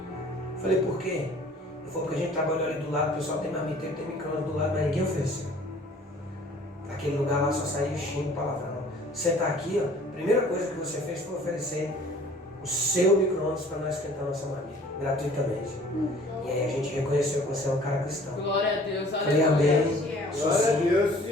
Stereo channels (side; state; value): both; normal; correlation 0.52